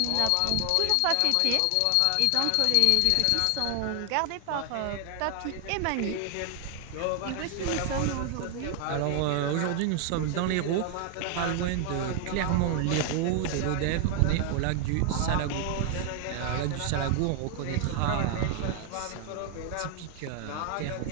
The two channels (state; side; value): different; both; correlation 0.00